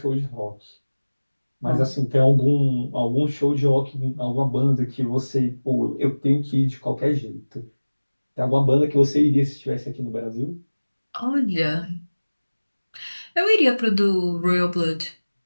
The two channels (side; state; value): both; inverted; correlation -1.00